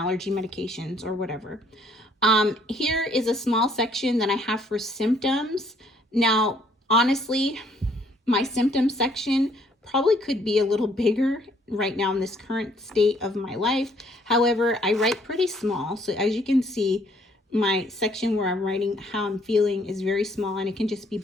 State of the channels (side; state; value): both; normal; correlation 0.65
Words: medications or whatever. Here is a small section that I have for symptoms. Now, honestly, my symptom section probably could be a little bigger right now in this current state of my life. However, I write pretty small. So as you can see, my section where I'm writing how I'm feeling is very small, and it can just be